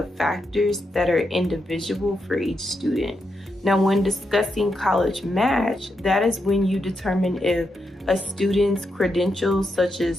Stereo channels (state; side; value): normal; both; correlation 0.84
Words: factors that are individual for each student. Now, when discussing College Match, that is when you determine if a student's credentials, such